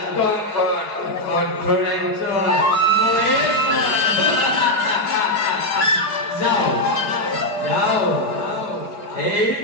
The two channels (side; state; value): right; late; 4.8 ms